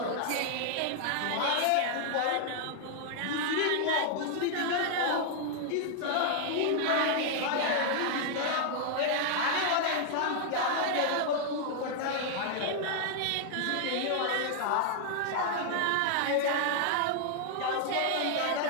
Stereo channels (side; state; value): both; different; correlation 0.00